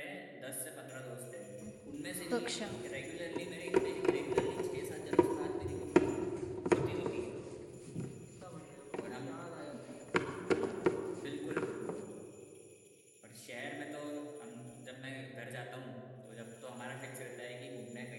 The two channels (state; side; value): identical; both; correlation 1.00